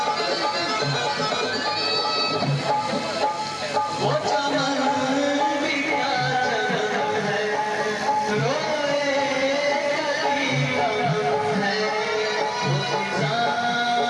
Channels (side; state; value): both; identical; correlation 1.00